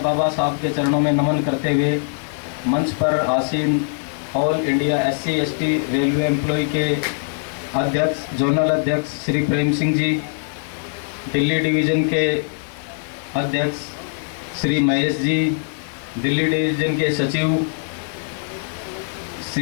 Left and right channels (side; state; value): right; silent; digital silence